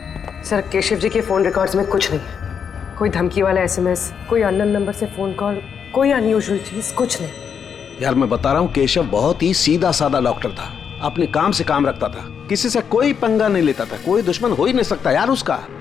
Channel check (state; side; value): quieter; right; 7.1 dB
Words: सर केशव जी के फोन रिकॉर्ड्स में कुछ नहीं, कोई धमकी वाला एसएमएस, कोई अननोन नंबर से फोन कॉल, कोई अनयूजुअल चीज, कुछ नहीं। यार मैं बता रहा हूँ केशव बहुत ही सीधा साधा डॉक्टर था, अपने काम से काम रखता था, किसी से कोई पंगा नहीं लेता था, कोई दुश्मन हो ही नहीं सकता यार उसका।